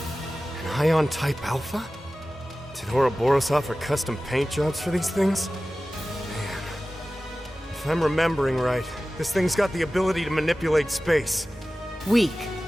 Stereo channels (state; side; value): normal; both; correlation 0.96